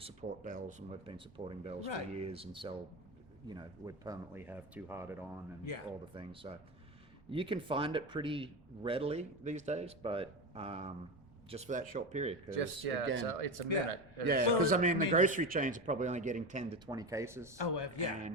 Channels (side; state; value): both; normal; correlation 0.20